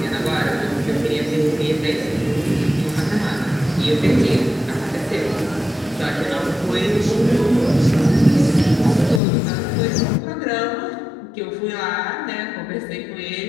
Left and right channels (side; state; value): right; drops out; at 9.2 s